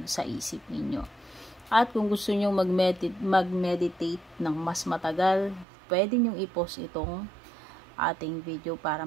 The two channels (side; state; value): left; drops out; at 5.7 s